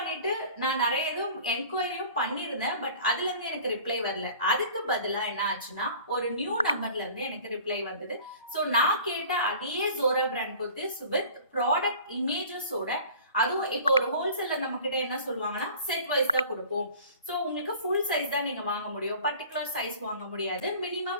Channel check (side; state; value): both; inverted; correlation -0.45